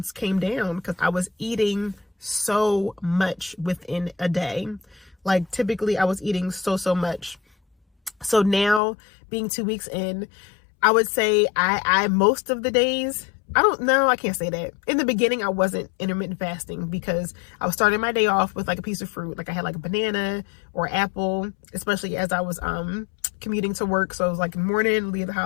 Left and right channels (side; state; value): right; drops out; at 8.8 s